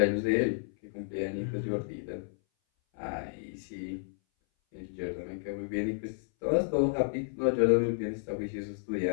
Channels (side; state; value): right; silent; 57 dB below the other